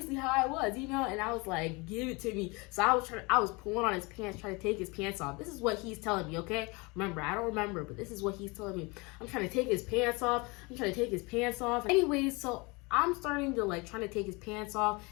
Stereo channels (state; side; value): quieter; right; 26.9 dB